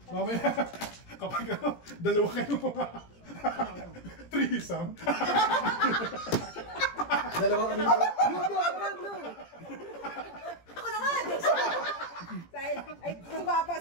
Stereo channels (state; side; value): late; right; 17 ms